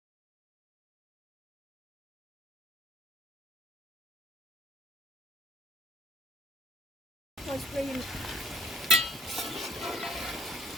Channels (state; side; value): normal; both; correlation 0.61